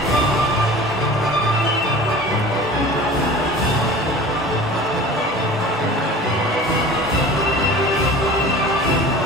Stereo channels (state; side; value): normal; both; correlation 0.40